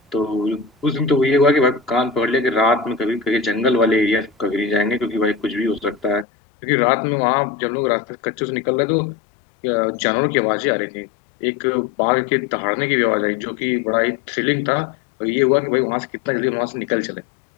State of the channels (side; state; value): right; drops out; at 6.2 s